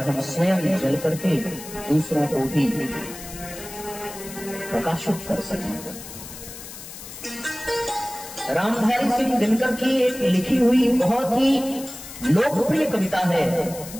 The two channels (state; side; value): noise; left; hiss, 13 dB below the sound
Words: हम स्वयं जल करके दूसरों को भी प्रकाशित कर सकेंगे। रामधारी सिंह दिनकर की एक लिखी हुई बहुत ही लोकप्रिय कविता है,